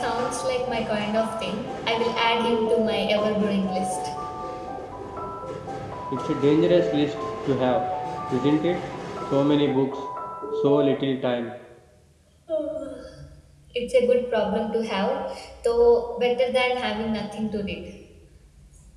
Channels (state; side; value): identical; both; correlation 1.00